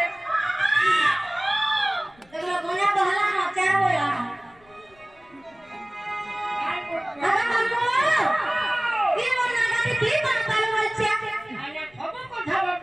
দেখলো গোনা বহলা না চার বলা আরে মামু কি মনা গাতি কি মন কালো বলছে আরে খবর কথা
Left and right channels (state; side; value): noise; left; rumble, 30 dB below the sound